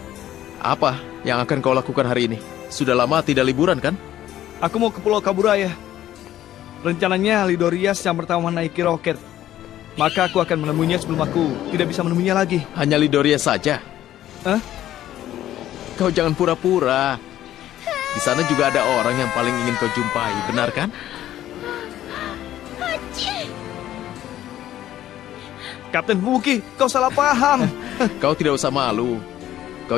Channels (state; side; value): quieter; right; 12.8 dB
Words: Apa yang akan kau lakukan hari ini? Sudah lama tidak liburan kan? Aku mau ke Pulau Kaburaya. Rencananya Lidorias yang pertama menaiki roket. Maka aku akan menemuinya sebelum aku tidak bisa menemuinya lagi. Hanya Lidoria saja? Hah? Kau jangan pura-pura. Di sana juga ada orang yang paling ingin kau jumpai, benar kan? Kapten Fubuki, kau salah paham. Kau tidak usah malu.